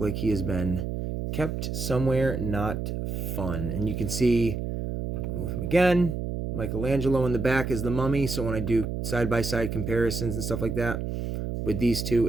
like he has been kept somewhere not fun. And you can see, I'll move him again. Michelangelo in the back is the mummy. So when I do side-by-side comparisons and stuff like that with these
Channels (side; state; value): right; noise; hum, 4 dB below the sound